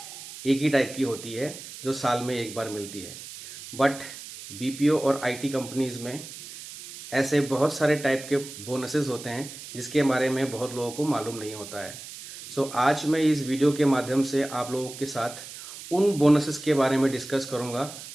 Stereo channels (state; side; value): noise; right; hiss, 13 dB below the sound